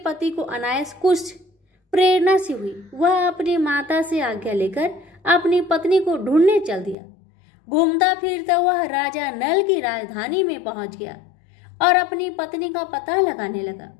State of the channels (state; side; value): drops out; right; at 7.0 s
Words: को अनायास कुछ प्रेरणा सी हुई। वह अपनी माता से आज्ञा लेकर अपनी पत्नी को ढूंढने चल दिया। घूमता फिरता वह राजा नल की राजधानी में पहुंच गया और अपनी पत्नी का पता लगाने लगा।